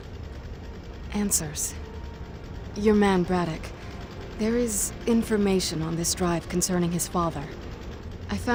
Answers. Your man, Braddock. There is information on this drive concerning his father. I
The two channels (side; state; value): both; identical; correlation 1.00